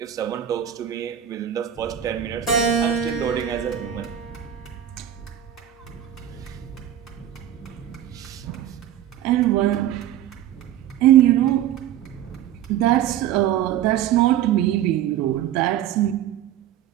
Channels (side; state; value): left; quieter; 11.0 dB